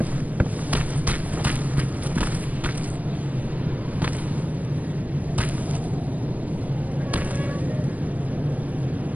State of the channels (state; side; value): late; left; 0.074 ms